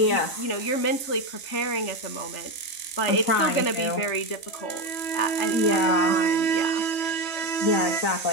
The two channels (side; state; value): right; late; 3.4 ms